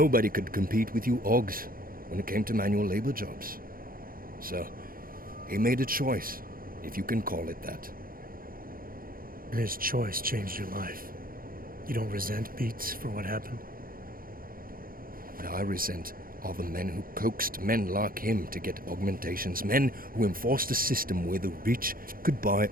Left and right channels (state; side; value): late; left; 0.42 ms